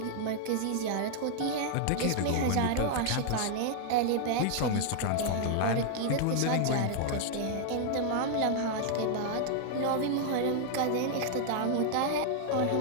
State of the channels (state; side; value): different; both; correlation -0.01